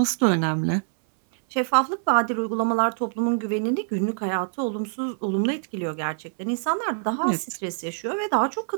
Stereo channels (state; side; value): silent; left; 62 dB below the other